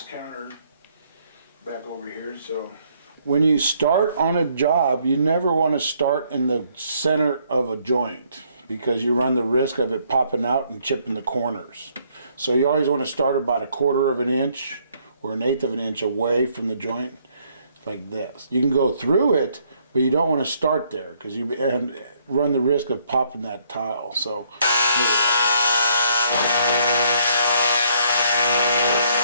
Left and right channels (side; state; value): both; inverted; correlation -0.68